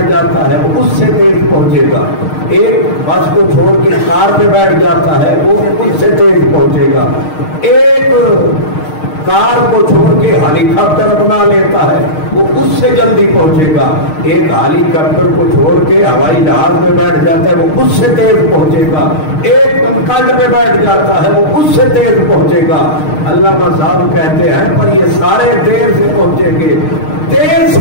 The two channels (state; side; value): late; right; 6.5 ms